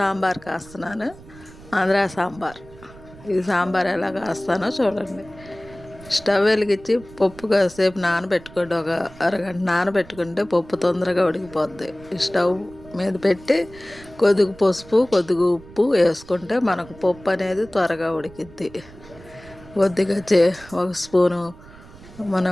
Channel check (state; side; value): noise; right; rumble, 20 dB below the sound